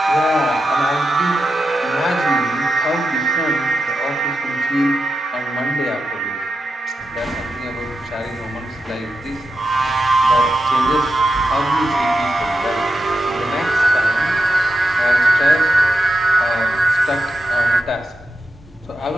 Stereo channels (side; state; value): both; normal; correlation 0.88